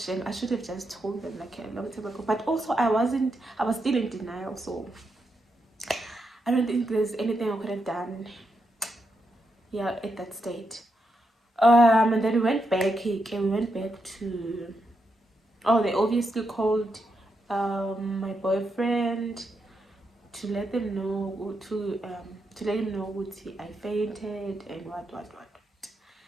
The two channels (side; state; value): both; normal; correlation 0.83